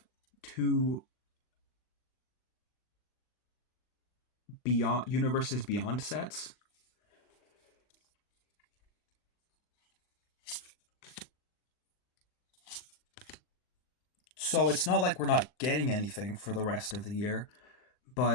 two beyond universes beyond sets. So it's not like we're not getting anything for the rest of the year,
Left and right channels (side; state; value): right; late; 40 ms